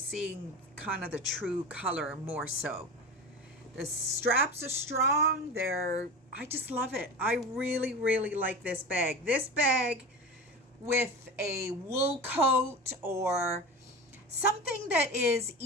kind of the true color more so. The straps are strong. I just love it. I really, really like this bag. This bag with a wool coat or something that is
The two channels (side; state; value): both; normal; correlation 0.30